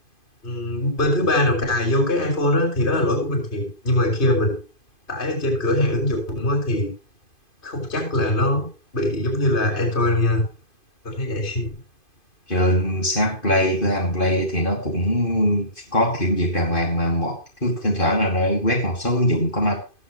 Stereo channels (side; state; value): right; late; 2.5 ms